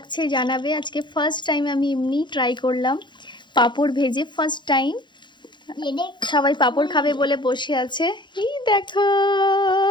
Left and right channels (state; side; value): late; right; 0.22 ms